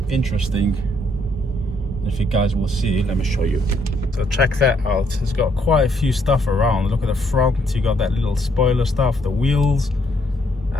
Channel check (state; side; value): normal; both; correlation 0.71